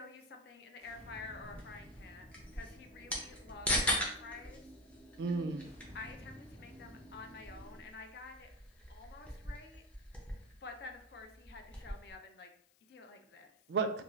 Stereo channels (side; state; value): left; noise; hiss, 30 dB below the sound